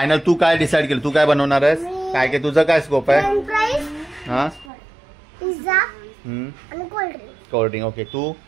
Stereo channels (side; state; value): left; drops out; at 4.7 s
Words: तू काय डिसाईड केलं तू काय बनवणार आहेस काय काय तुझं काय स्कोप आहे फ्रेंच फ्राईज, हा पिझ्झा आणि कोल्ड्रिंक. कोल्ड्रिंक ओके तू